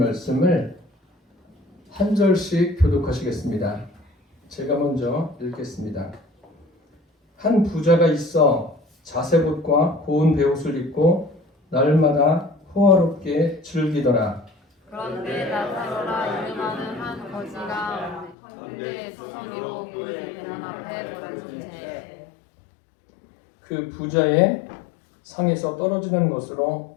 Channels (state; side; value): drops out; right; at 18.4 s